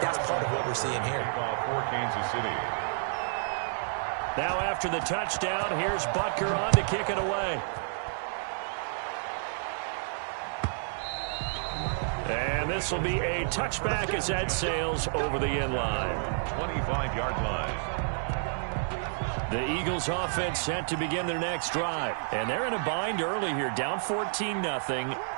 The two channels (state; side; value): silent; left; digital silence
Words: part of what we're seeing here. For Kansas City. Now after the touchdown, here's Butker on to kick it away. And this will be a touchback as that sails over the end line. 25-yard line. The Eagles offense set to begin their next drive. And they're in a bind early here, down 14-0.